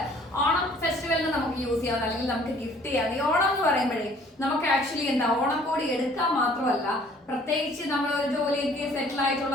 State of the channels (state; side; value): normal; both; correlation 0.56